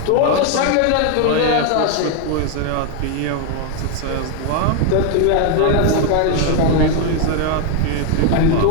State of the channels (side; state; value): both; different; correlation 0.01